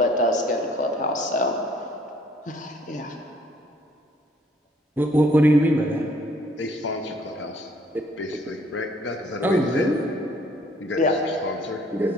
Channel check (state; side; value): normal; both; correlation 0.61